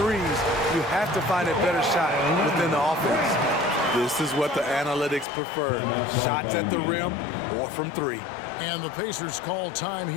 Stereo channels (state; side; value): drops out; right; at 5.2 s